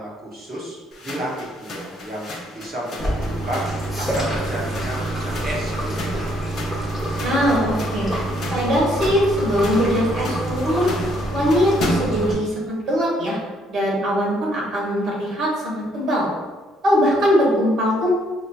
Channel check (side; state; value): both; normal; correlation 0.69